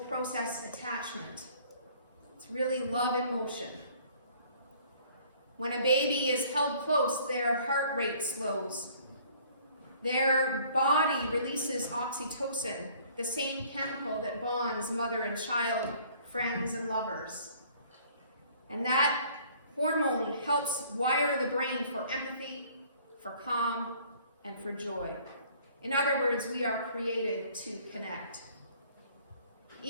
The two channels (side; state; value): both; inverted; correlation -0.56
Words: process attachment. It's really love in motion. When a baby is held close, their heart rate slows. Their body releases oxytocin, the same chemical that bonds mother and child, friends and lovers. And that hormone helps wire the brain for empathy, for calm, and for joy. In other words, we are created to connect.